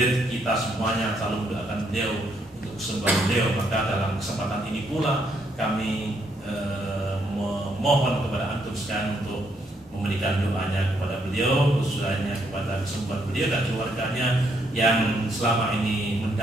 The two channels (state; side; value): normal; both; correlation 0.74